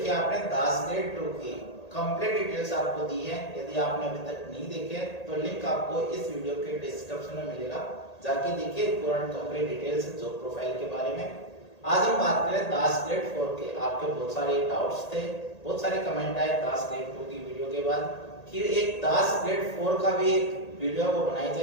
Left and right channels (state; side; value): late; right; 1.8 ms